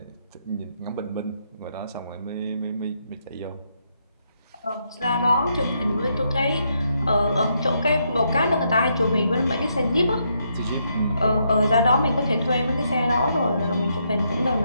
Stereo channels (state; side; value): inverted; both; correlation -0.77